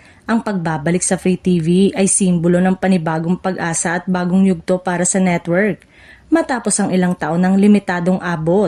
ang pagbabalik sa Free TV ay simbolo ng panibagong pag-asa at bagong yugto para sa network matapos ang ilang taon ng limitadong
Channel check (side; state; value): both; identical; correlation 1.00